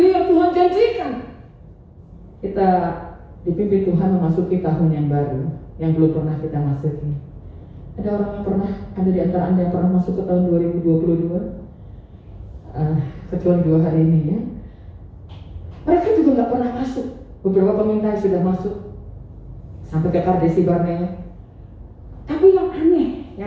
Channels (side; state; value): both; identical; correlation 1.00